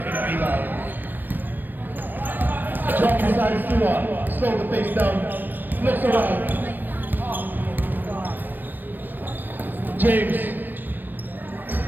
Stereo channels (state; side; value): late; left; 0.088 ms